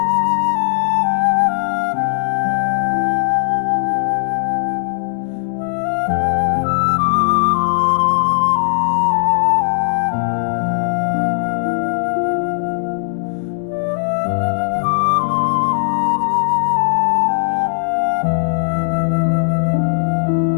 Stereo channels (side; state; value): right; silent; digital silence